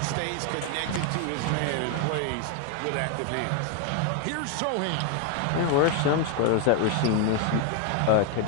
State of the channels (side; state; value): both; different; correlation 0.01